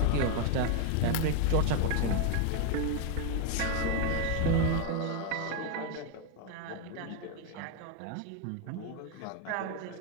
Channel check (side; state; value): both; different; correlation 0.01